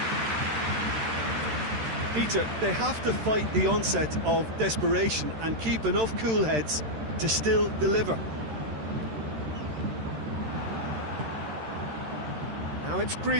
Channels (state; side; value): late; left; 13 ms